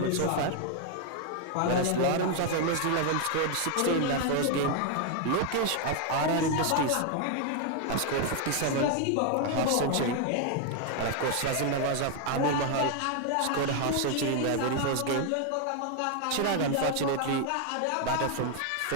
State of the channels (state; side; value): different; both; correlation 0.00